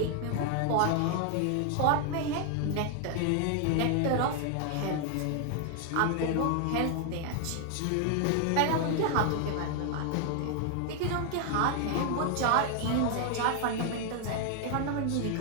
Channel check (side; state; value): both; different; correlation 0.00